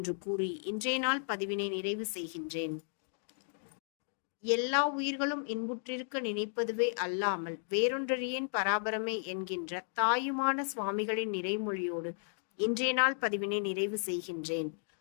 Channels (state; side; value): silent; right; digital silence